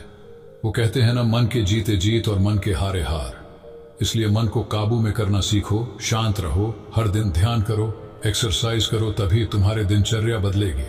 वो कहते हैं ना, मन के जीते जीत और मन के हारे हार। इसलिए मन को काबू में करना सीखो, शांत रहो, हर दिन ध्यान करो, एक्सरसाइज करो, तभी तुम्हारे दिनचर्या बदलेगी।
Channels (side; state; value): both; identical; correlation 1.00